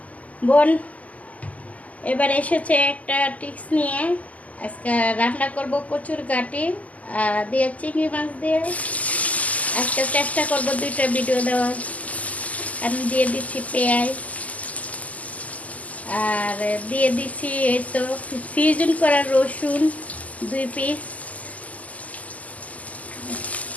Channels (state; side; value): late; right; 0.074 ms